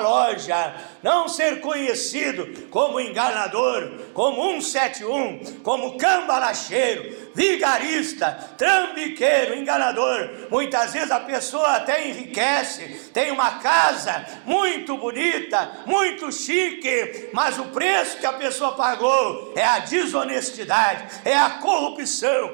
não ser conhecido como enganador, como 171, como cambalacheiro, vigarista, trambiqueiro, enganador. Muitas vezes a pessoa até enriquece, tem uma casa muito bonita, muito chique, mas o preço que a pessoa pagou é a desonestidade, é a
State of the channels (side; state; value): left; silent; digital silence